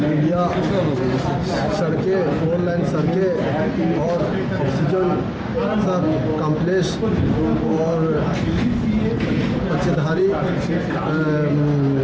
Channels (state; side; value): identical; both; correlation 1.00